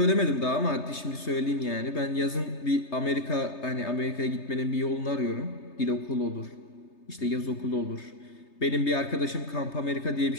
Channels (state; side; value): late; right; 3.3 ms